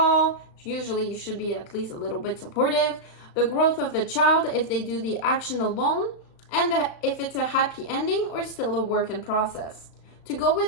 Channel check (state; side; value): late; right; 36 ms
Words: Usually you should be at least a little bit supportive. The growth of the child, if they do the action alone, and if it's a happy ending or still a work in process. To go